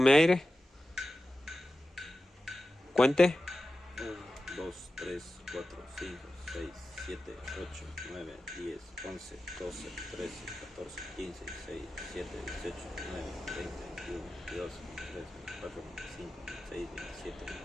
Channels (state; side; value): normal; both; correlation 0.93